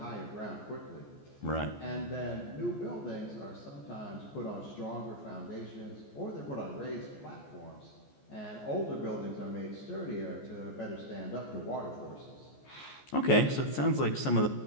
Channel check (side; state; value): right; late; 14 ms